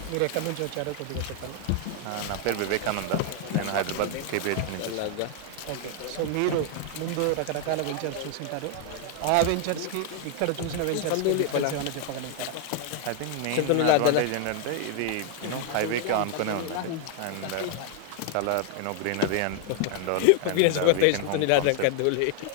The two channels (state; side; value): different; both; correlation 0.00